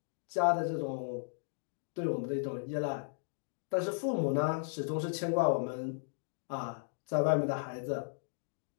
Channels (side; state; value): right; silent; digital silence